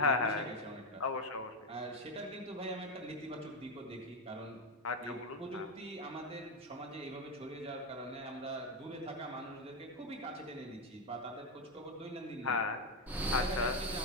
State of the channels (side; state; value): both; normal; correlation 0.08